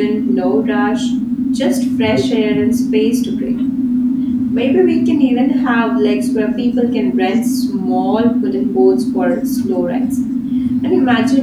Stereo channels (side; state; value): both; identical; correlation 1.00